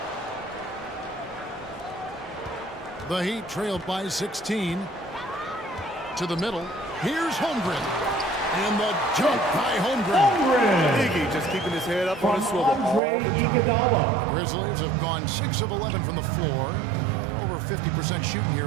The Heat trailed by 16. To the middle. Here's Holmgren. And the jump by Holmgren. Iggy just keeping his head up on his swivel all Andre the time. Iguodala. Grizzlies have gone 6 of 11 from the floor. Over 50% shooting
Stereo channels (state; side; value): drops out; left; at 13.0 s